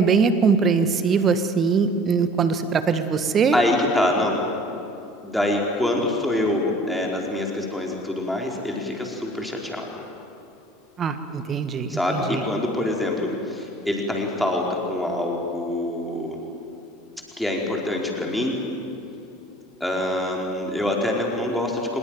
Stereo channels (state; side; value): normal; both; correlation 0.50